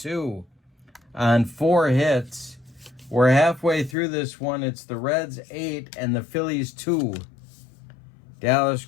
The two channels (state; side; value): drops out; right; at 4.0 s